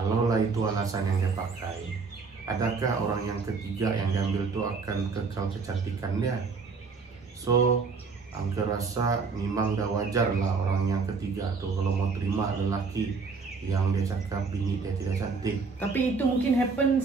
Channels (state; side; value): quieter; left; 4.8 dB